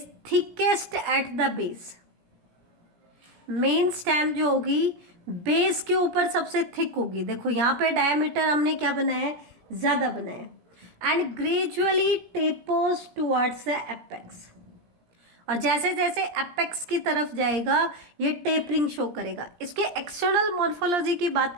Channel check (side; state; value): left; late; 17 ms